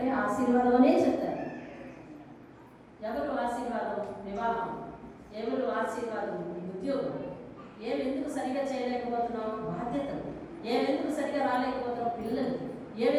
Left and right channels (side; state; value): both; identical; correlation 1.00